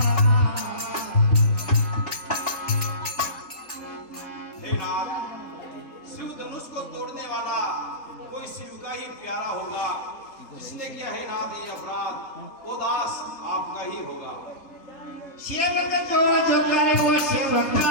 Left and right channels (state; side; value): late; right; 3.4 ms